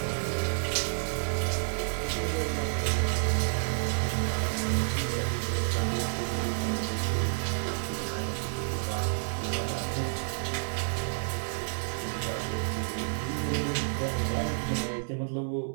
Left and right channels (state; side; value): silent; left; digital silence